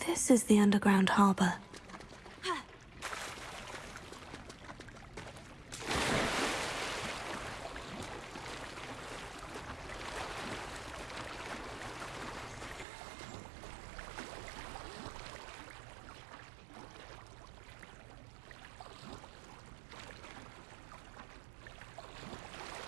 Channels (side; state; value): left; drops out; at 12.9 s